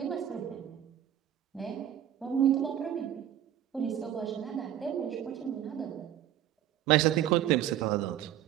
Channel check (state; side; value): quieter; left; 11.0 dB